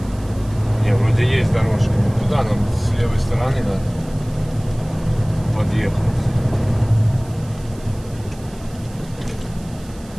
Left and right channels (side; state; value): right; noise; hiss, 23 dB below the sound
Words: Не, вроде есть дорожка. Туда нам с левой стороны надо подъехать.